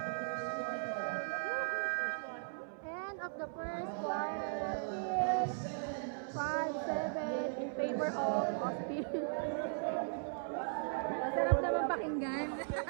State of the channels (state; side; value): silent; left; 53 dB below the other